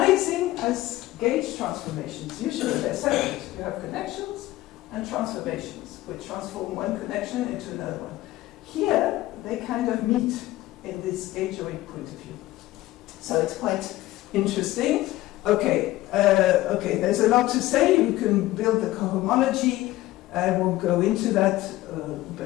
as gauge transformations. Usually they're separate. You have connections and transformations, which transform one connection into another one. Here, they kind of meet in this gaugeoid point of view. So it's quite interesting. Okay, there's a lot to say. You can build the cohomology. I won't go into that,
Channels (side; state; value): right; quieter; 16.8 dB